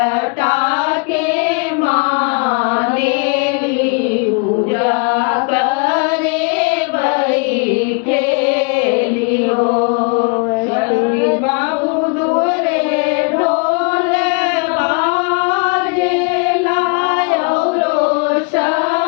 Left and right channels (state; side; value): quieter; right; 35.7 dB